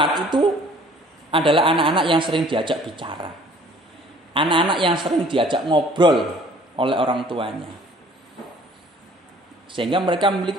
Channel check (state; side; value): normal; both; correlation 0.54